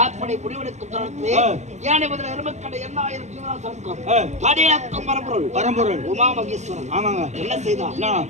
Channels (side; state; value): left; late; 0.33 ms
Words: அப்படி முடிவெடுக்கும் தருணத்திலே ஏனை முதல் எருமக்கடை 8000 ஜீவராசனுக்கும் படியக்கும் பரம்பொருள் உமா மகேஸ்வரன் என்ன செய்தார்?